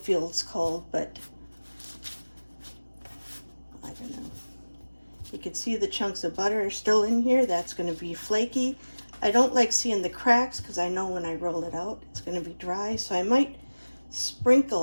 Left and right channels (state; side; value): inverted; both; correlation -1.00